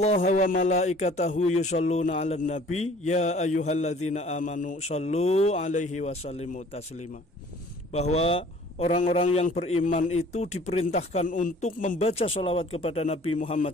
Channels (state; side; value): normal; both; correlation 0.51